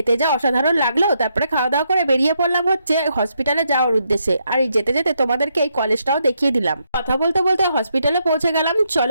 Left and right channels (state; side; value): inverted; both; correlation -0.78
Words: যা অসাধারণ লাগলো। তারপরে খাওয়া দাওয়া করে বেরিয়ে পড়লাম হচ্ছে হসপিটালে যাওয়ার উদ্দেশ্যে। আর এই যেতে যেতে তোমাদেরকে এই কলেজটাও দেখিয়ে দিলাম। কথা বলতে বলতে হসপিটালে পৌঁছে গেলাম।